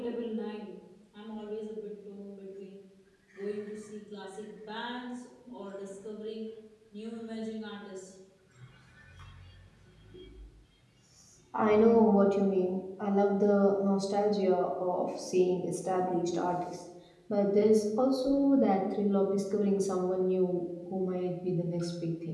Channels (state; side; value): identical; both; correlation 1.00